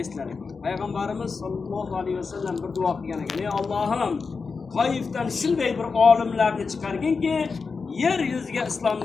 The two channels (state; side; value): quieter; right; 4.8 dB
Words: eslar ekan. Payg'ambarimiz sollallohu alayhi vasallam bir duo qilgan ekan. Ey Allohim, Toifdan shunday bir olimlarni chiqarginki, yer yuziga